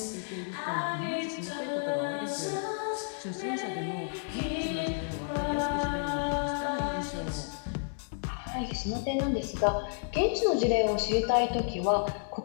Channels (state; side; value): silent; right; digital silence